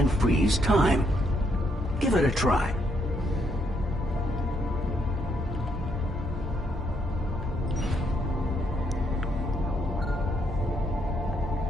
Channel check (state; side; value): normal; both; correlation 0.74